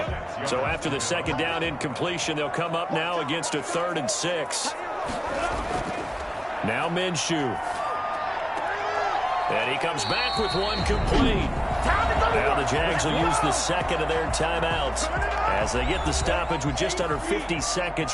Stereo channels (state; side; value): identical; both; correlation 1.00